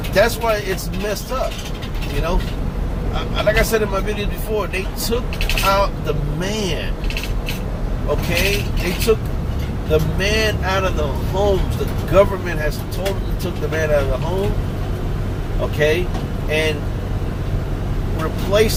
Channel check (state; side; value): identical; both; correlation 1.00